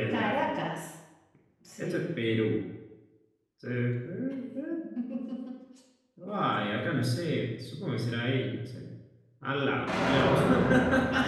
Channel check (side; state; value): both; identical; correlation 1.00